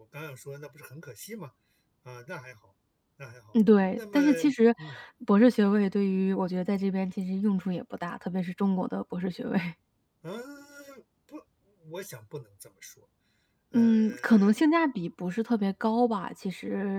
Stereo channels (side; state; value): both; identical; correlation 1.00